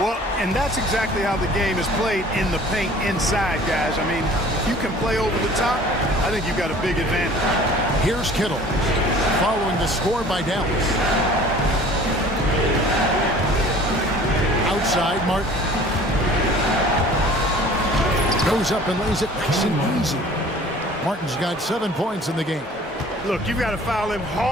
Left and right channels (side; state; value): both; normal; correlation 0.48